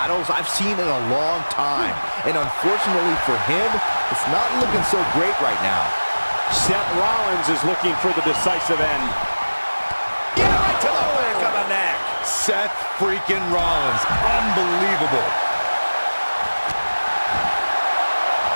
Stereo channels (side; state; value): both; inverted; correlation -1.00